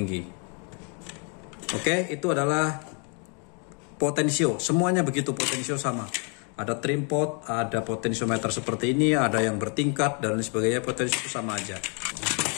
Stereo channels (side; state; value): right; quieter; 37.8 dB